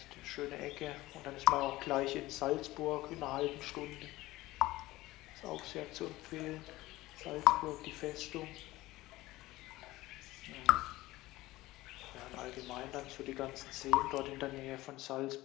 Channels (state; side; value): quieter; right; 18.1 dB